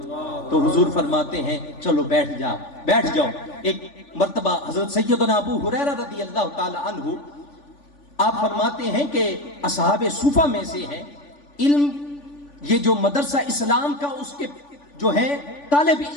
تو حضور فرماتے ہیں چلو بیٹھ جاؤ. ایک مرتبہ حضرت سیدنا ابو ہریرہ رضی اللہ تعالی عنہ آپ فرماتے ہیں کہ اصحاب صوفہ میں سے ہیں. علم یہ جو مدرسہ اسلام کا اس کے جو ہے طالب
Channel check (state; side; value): late; right; 3.5 ms